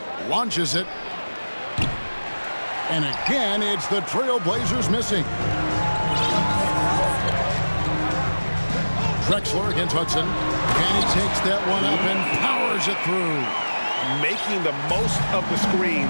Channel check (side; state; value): both; inverted; correlation -1.00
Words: Launches it. And again, it's the Trailblazers missing. Drexler against Hudson. And he takes that one up and powers it through. Making the most of the screen,